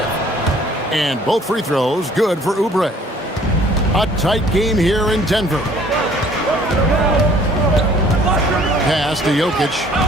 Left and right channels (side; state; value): both; normal; correlation 0.56